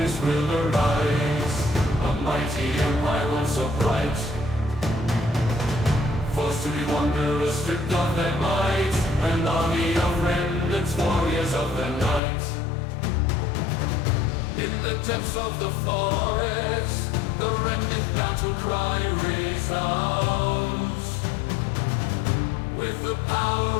will arise. A mighty empire once so bright, forced to be wanderers, stripped of their might, an army of remnants, warriors of the night. In the depths of the forest, the remnant battle cry resounds. With the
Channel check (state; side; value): drops out; right; at 12.2 s